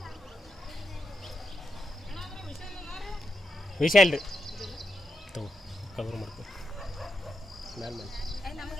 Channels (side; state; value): both; normal; correlation 0.85